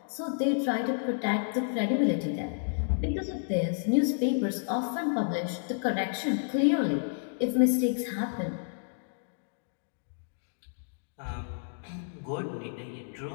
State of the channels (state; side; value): silent; right; digital silence